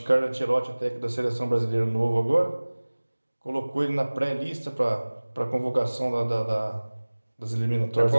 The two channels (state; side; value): inverted; both; correlation -1.00